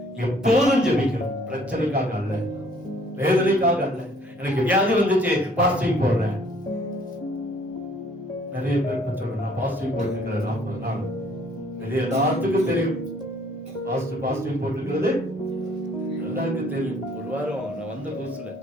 எப்போதும் ஜெபிக்கணும். பிரச்சனைக்காக அல்ல, வேதனைக்காக அல்ல. எனக்கு வியாதி வந்துச்சு, பாஸ்டிங் போடுறேன். நிறைய பேர் சொல்றேன், நான் பாஸ்டிங் போட்டுக்கிறேன் 40 நாள். வெளியே எல்லாத்துக்கும் தெரியும் பாஸ்டிங் போட்டுக்கிறது, எல்லாருக்கும் தெரியும். ஒரு வாரம் நான் வந்த புதுசுல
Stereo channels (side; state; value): both; normal; correlation 0.59